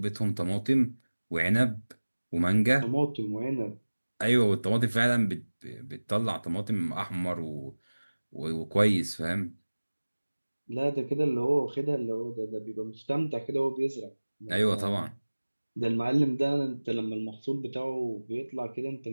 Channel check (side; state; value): both; inverted; correlation -1.00